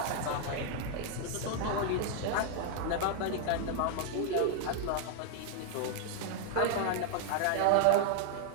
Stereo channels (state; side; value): different; both; correlation 0.00